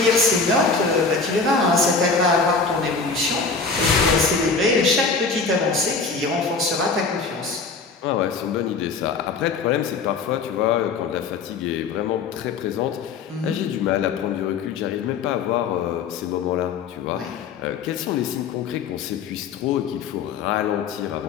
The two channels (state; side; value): quieter; right; 4.7 dB